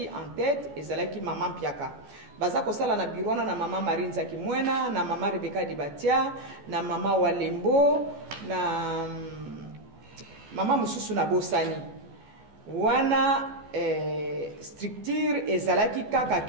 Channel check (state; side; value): late; left; 14 ms